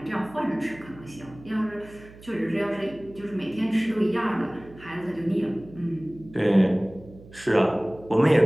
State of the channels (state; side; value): noise; right; hum, 20 dB below the sound